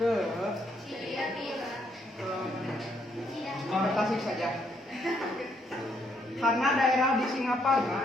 Tasik saja. Karena daerah di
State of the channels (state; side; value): normal; both; correlation 0.72